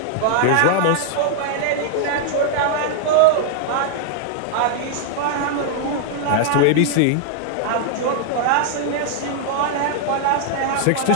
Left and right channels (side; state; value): both; different; correlation -0.01